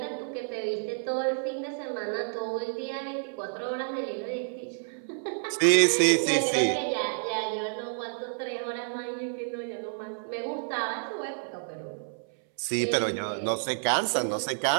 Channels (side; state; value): left; silent; 58 dB below the other